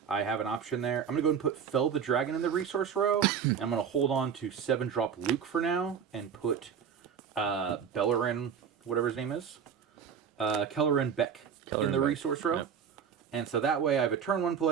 I have an option there. I'm going to go and put Fell the Dragon in the resource row. I'm going to hold on to 7-drop Luke for now and put Bellerin, whatever his name is, Kellerin Beck in the resource row. Yep. And so that way I have a turn 1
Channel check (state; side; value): quieter; left; 7.5 dB